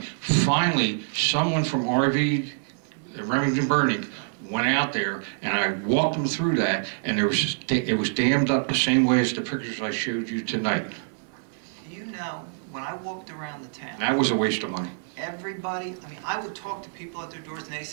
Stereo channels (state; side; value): silent; left; digital silence